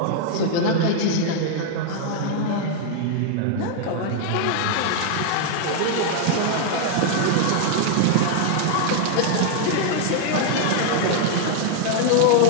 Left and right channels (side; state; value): both; different; correlation -0.01